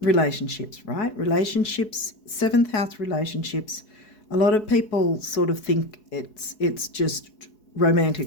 Relationships, right? Relationships, 7th house relationships. A lot of people sort of think it's just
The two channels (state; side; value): late; right; 4.7 ms